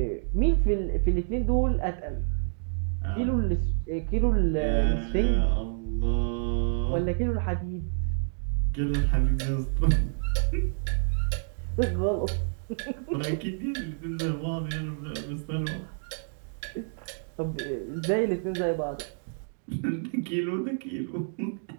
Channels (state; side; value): silent; left; digital silence